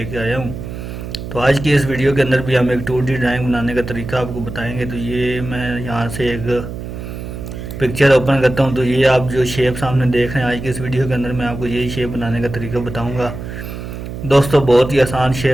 आया हूँ। तो आज की इस वीडियो के अंदर भी हम एक 2D ड्राइंग बनाने का तरीका आपको बताएंगे। तो ये मैं यहाँ से एक पिक्चर ओपन करता हूँ। तो ये आप जो शेप सामने देख रहे हैं, आज की इस वीडियो के अंदर मैं आपको यही शेप बनाने का तरीका बताऊँगा। दोस्तों बहुत ही आसान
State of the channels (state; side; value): noise; right; hum, 9 dB below the sound